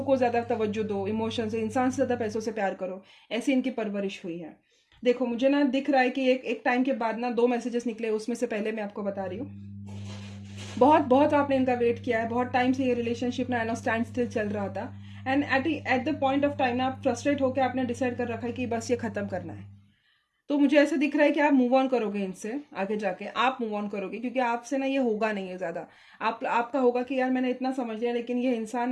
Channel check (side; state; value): both; identical; correlation 1.00